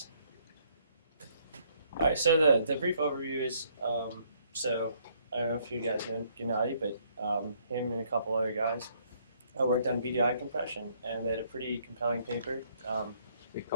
All right. So the brief overview is so I don't know if you guys know Gennady, but him and a couple other guys worked on BDI compression, and they had a pretty compelling paper. We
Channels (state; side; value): inverted; both; correlation -0.67